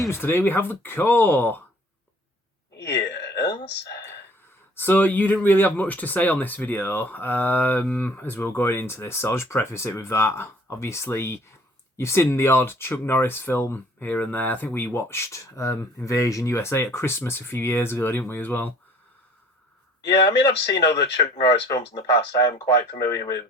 Today we have The Core. Yes. So you didn't really have much to say on this video as we were going into this, so I'll just preface it with that. Obviously, you've seen the odd Chuck Norris film here and there. I think we watched Invasion USA at Christmas a few years ago, didn't we, as well? Yeah, I mean, I've seen other Chuck Norris films in the past. I am quite familiar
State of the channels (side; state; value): both; normal; correlation 0.54